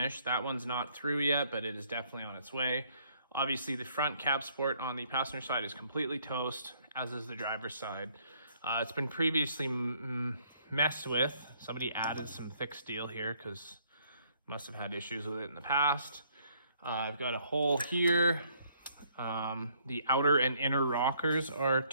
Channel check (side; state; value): both; inverted; correlation -0.65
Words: That one's not through yet, but it is definitely on its way. Obviously the front cab support on the passenger side is completely toast, as is the driver's side. It's been previously messed with. Somebody added some thick steel here because must have had issues with it in the past. I've got a hole here. The outer and inner rockers are